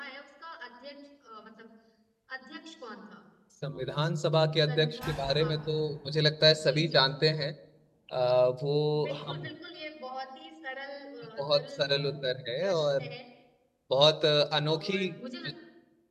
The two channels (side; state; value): both; identical; correlation 1.00